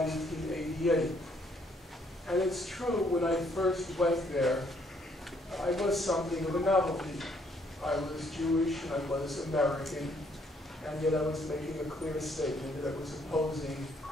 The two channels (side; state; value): both; normal; correlation 0.68